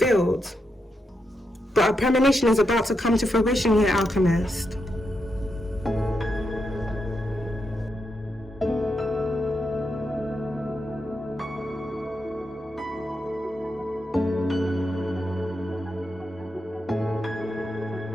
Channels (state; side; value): normal; both; correlation 0.84